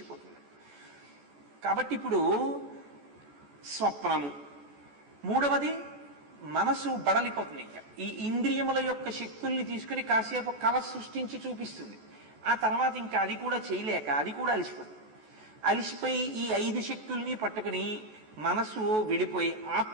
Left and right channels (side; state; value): left; late; 14 ms